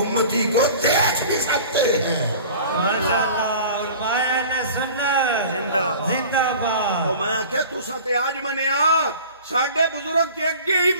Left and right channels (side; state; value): both; inverted; correlation -0.42